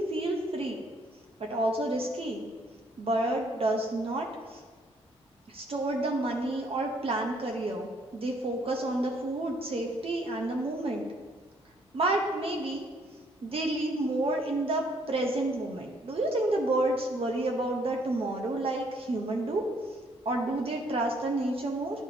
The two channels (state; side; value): normal; both; correlation 0.66